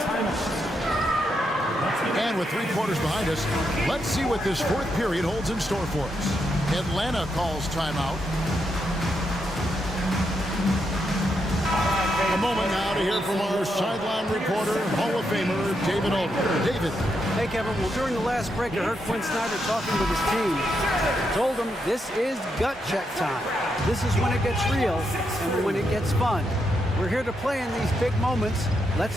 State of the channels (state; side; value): normal; both; correlation 0.81